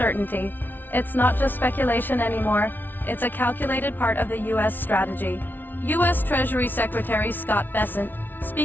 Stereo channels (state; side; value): late; right; 0.090 ms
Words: It's not just speculation anymore, it's a calculated part of the U.S. strategy. U.S. Treasury Secretary Scott Bessent,